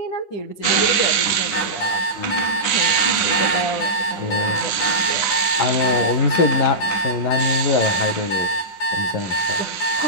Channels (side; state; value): right; late; 10 ms